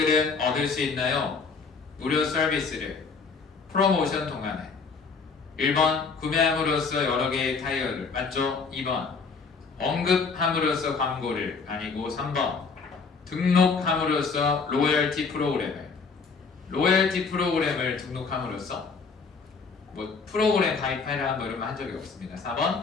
얻을 수 있나요? 무료 서비스를. 프로모션 동안에. 1번 구매함으로써 여러 개의 타이어를. 맞죠? 2번 언급함으로써 광고를. 아니고 3번 등록함으로써 로열티 프로그램을. 로열티 프로그램을 등록함으로써 뭐 프로그램 가입해라 뭐 이런 거 한 적이 없습니다.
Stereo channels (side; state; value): right; quieter; 5.0 dB